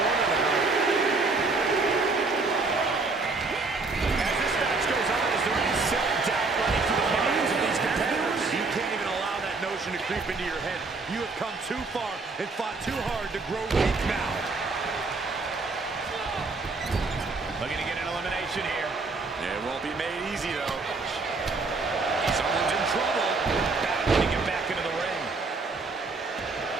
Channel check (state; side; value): quieter; left; 3.8 dB